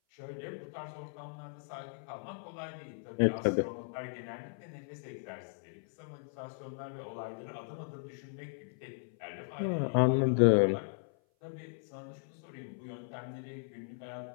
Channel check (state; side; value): silent; right; 53 dB below the other